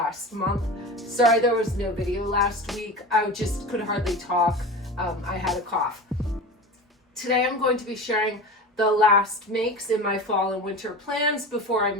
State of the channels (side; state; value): both; normal; correlation 0.31